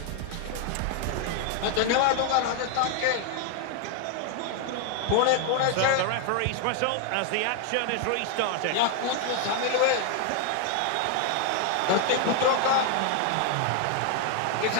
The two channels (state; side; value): different; both; correlation 0.00